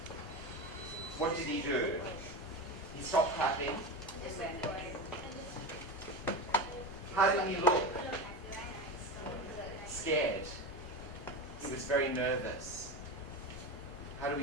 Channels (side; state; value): both; normal; correlation 0.22